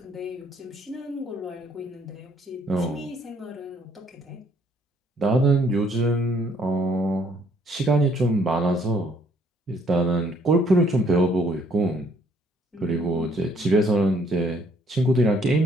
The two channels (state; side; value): normal; both; correlation 0.64